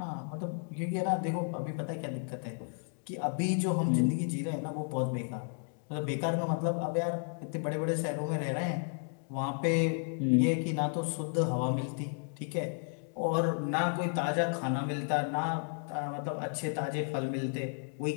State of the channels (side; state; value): right; silent; 56 dB below the other